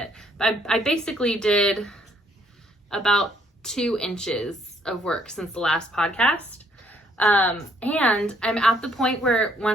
But I basically did about 2 inches of work since the last podcast. And I'm at the point where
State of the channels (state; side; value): normal; both; correlation 0.67